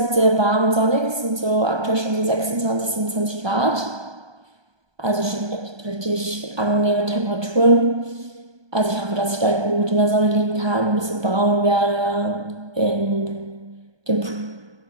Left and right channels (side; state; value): left; late; 1.2 ms